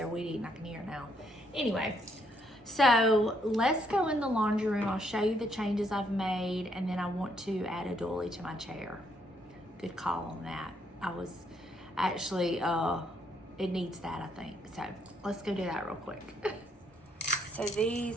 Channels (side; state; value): both; normal; correlation 0.72